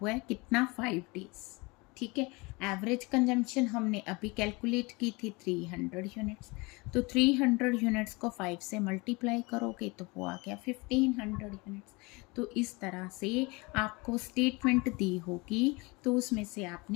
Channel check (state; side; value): quieter; right; 26.0 dB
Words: है कितना, 5 डेज। ठीक है, एवरेज कंजम्पशन हमने अभी कैलकुलेट की थी 300 यूनिट्स। तो 300 यूनिट्स को 5 से मल्टीप्लाई करोगे तो वो आ गया 1500 यूनिट्स। तो इस तरह से आपको स्टेटमेंट दी होगी, तो उसमें से